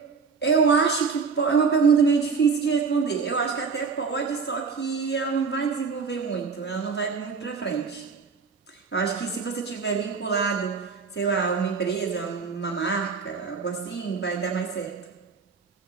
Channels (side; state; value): left; quieter; 5.3 dB